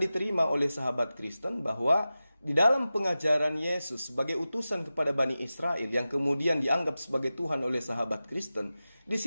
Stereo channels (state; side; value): inverted; both; correlation -0.94